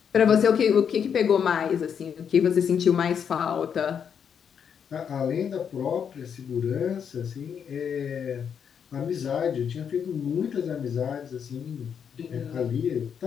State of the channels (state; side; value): quieter; right; 7.5 dB